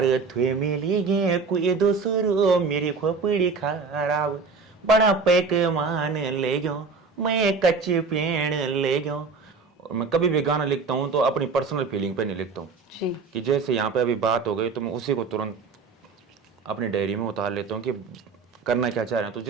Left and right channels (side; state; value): left; quieter; 4.7 dB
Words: थे मिली गे कोई दूसरो मेरी खोपड़ी खराब। बड़ा पैकमान ले गयो मैं कच्चे पेड़ ले गयो। और मैं कभी भी गाना लिखता हूँ तो अपनी पर्सनल फीलिंग पे नहीं लिखता हूँ कि जैसे यहाँ पे अभी बात हो गई तो मैं उसी को तुरंत अपनी डायरी में उतार लेता हूँ कि करना क्या चाह रहे हैं। तो